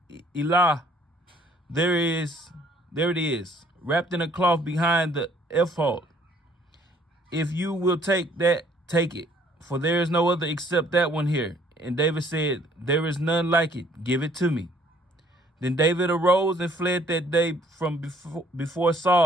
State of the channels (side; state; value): both; normal; correlation 0.61